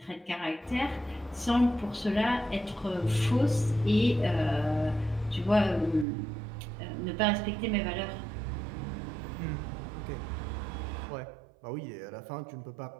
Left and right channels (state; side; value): drops out; left; at 6.1 s